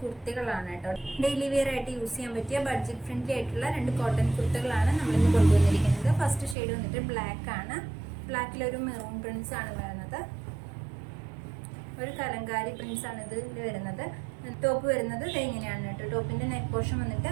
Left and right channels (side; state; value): left; drops out; at 6.6 s